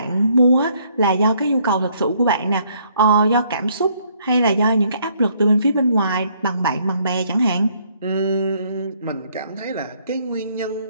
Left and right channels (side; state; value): both; inverted; correlation -0.67